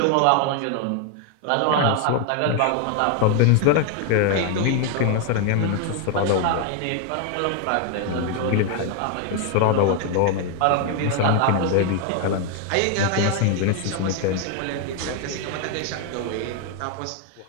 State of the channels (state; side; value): different; both; correlation 0.01